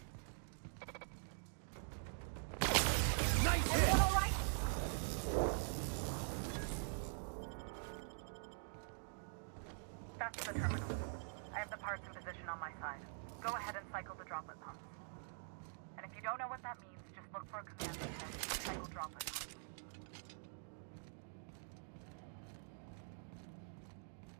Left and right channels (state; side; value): silent; left; digital silence